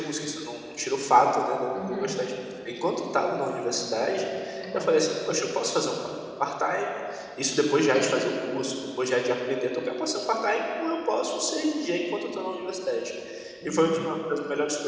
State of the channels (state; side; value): identical; both; correlation 1.00